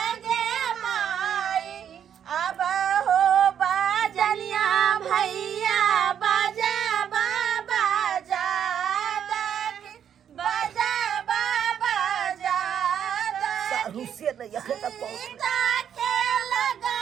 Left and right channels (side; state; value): left; quieter; 8.9 dB